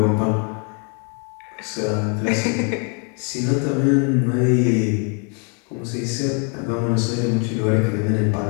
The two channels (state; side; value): quieter; right; 37.8 dB